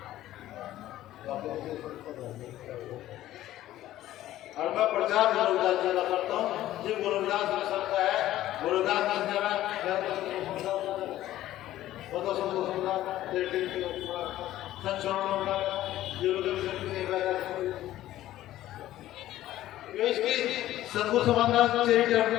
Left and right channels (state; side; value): quieter; right; 14.1 dB